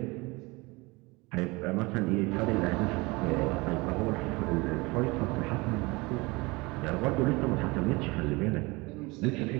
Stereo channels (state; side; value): quieter; left; 24.4 dB